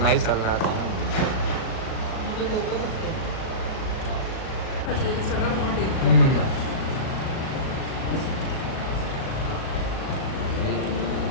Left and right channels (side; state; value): right; late; 38 ms